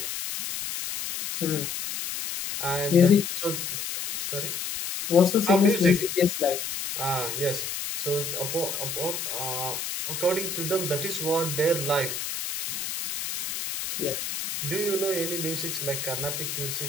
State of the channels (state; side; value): noise; left; hiss, 4 dB below the sound